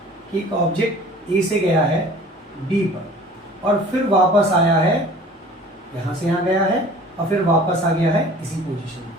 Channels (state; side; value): normal; both; correlation 0.46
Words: कि एक ऑब्जेक्ट ए से गया है बी पर और फिर वापस आया है, यहाँ से यहाँ गया है और फिर वापस आ गया है इसी पोजीशन में